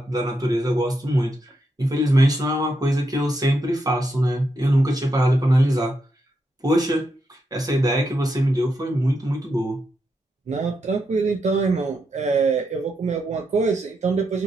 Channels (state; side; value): normal; both; correlation 0.83